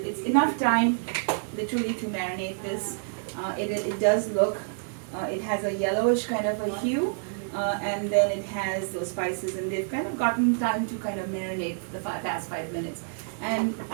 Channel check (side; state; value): left; silent; digital silence